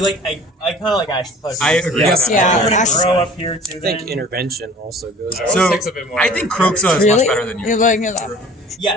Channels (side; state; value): both; normal; correlation 0.45